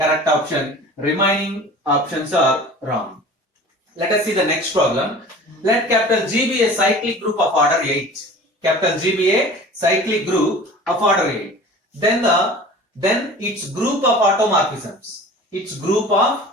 option. Remaining options are wrong. Let us see the next problem. Let capital G be a cyclic group of order 8. Capital G be a cyclic group of order 8. Then its group of automorphisms. Its group of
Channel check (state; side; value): normal; both; correlation 0.41